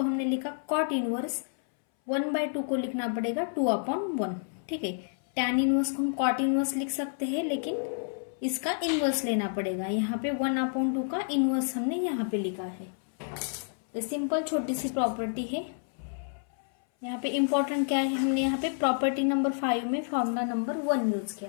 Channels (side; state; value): right; silent; 58 dB below the other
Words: हमने लिखा, कॉट इनवर्स 1/2 को लिखना पड़ेगा 2/1। ठीक है, tan इनवर्स को हम कॉट इनवर्स लिख सकते हैं लेकिन इसका इनवर्स लेना पड़ेगा। यहाँ पे 1/2 का इनवर्स हमने यहाँ पे लिखा है। तो सिंपल छोटी सी प्रॉपर्टी है। यहाँ पे इंपॉर्टेंट क्या है, हमने यहाँ पे प्रॉपर्टी नंबर 5 में फॉर्मूला नंबर 1 यूज किया